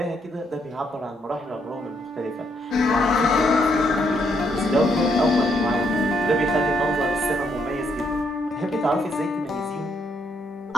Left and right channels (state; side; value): normal; both; correlation 0.74